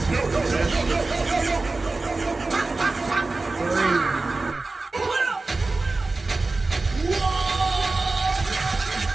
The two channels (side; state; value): left; quieter; 3.5 dB